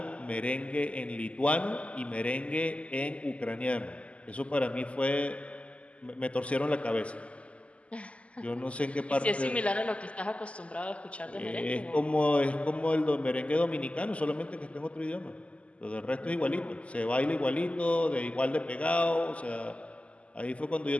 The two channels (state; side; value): late; right; 0.061 ms